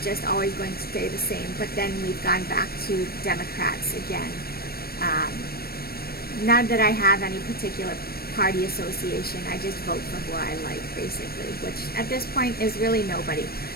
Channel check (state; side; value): late; right; 0.44 ms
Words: just always going to stay the same. But then we've gone back to Democrats again. Not that I have any particular party association, I just vote for who I like, basically, which at this point is really nobody.